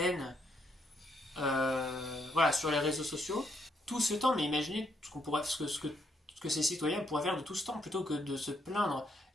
voilà, sur les réseaux sociaux, tout ce temps, mais imaginez ce que ces citoyens pourraient faire de tout ce temps, plutôt que de se plaindre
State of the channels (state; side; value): normal; both; correlation 0.75